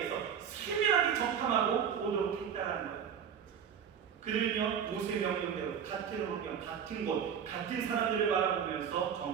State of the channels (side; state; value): left; quieter; 8.0 dB